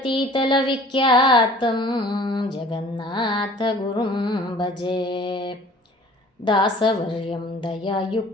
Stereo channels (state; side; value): normal; both; correlation 0.49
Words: ವಿಖ್ಯಾತಂ ಜಗನ್ನಾಥ ಗುರುಂ ಭಜೆ. ದಾಸವರ್ಯಂ